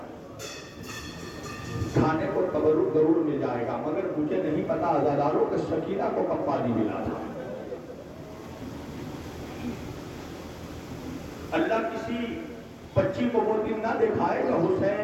کھانے کو تبرک ضرور مل جائے گا، مگر مجھے نہیں پتا عزاداروں کہ سکینہ کو کب پانی ملا تھا۔ اللہ کسی بچی کو وہ دن نہ دکھائے کہ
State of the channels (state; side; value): identical; both; correlation 1.00